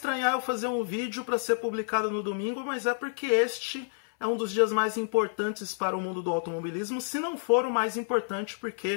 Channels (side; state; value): right; silent; 58 dB below the other